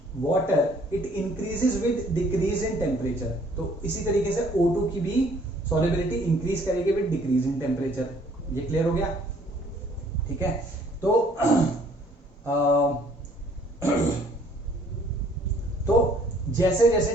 water, it increases with decrease in temperature. तो इसी तरीके से O2 की भी सॉल्युबिलिटी इंक्रीज करेगी विद डिक्रीज इन टेम्परेचर। ये क्लियर हो गया, ठीक है। तो तो जैसे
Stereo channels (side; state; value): both; normal; correlation 0.60